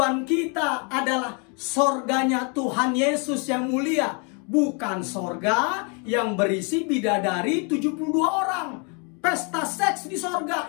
kita adalah sorganya Tuhan Yesus yang mulia. Bukan sorga yang berisi bidadari 72 orang. Pesta seks di sorga,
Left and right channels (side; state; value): right; quieter; 35.3 dB